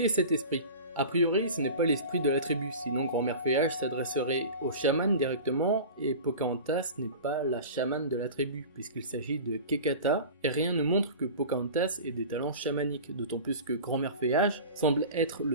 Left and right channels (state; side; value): inverted; both; correlation -0.35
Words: cet esprit ? A priori, ce n'est pas l'esprit de la tribu, sinon Grand-mère Feuillage s'adresserait au chaman directement, et Pocahontas n'est pas la chamane de la tribu, puisqu'il s'agit de Kekata, et rien ne montre que Pocahontas ait des talents chamaniques, d'autant plus que Grand-mère Feuillage semble être